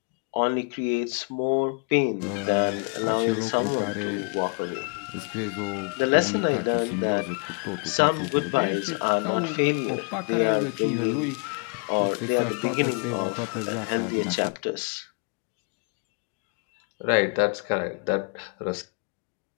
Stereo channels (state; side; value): quieter; right; 36.4 dB